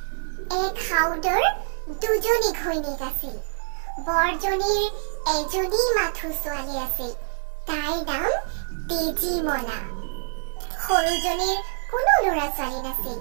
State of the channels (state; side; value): silent; left; digital silence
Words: এক সাউদৰ দুজনী ঘৈণীক আছিল। বৰজনীৰ এজনী মাথো ছোৱালী আছিল, তাইৰ নাম তেজীমলা। সৰুজনীৰ কোনো ল'ৰা ছোৱালী নাছিল।